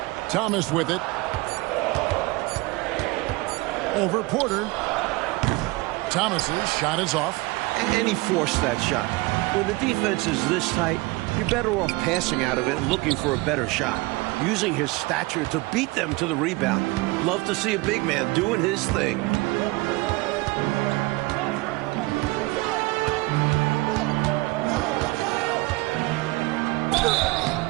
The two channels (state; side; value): quieter; left; 23.1 dB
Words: Thomas with it. Over Porter. Thomas's shot is off. And he forced that shot. When the defense is this tight, you're better off passing out of it and looking for a better shot. Using his stature to beat them to the rebound. Love to see a big man doing his thing.